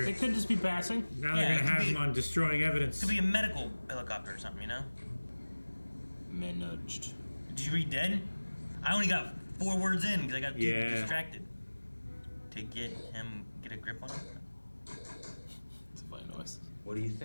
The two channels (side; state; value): both; inverted; correlation -1.00